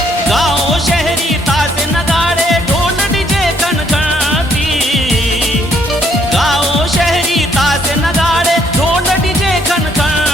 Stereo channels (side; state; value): both; normal; correlation 0.69